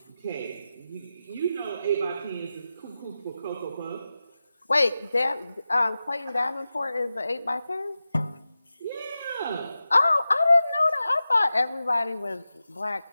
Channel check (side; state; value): both; inverted; correlation -0.93